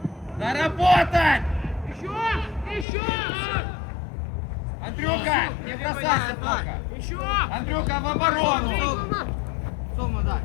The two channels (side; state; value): right; drops out; at 2.9 s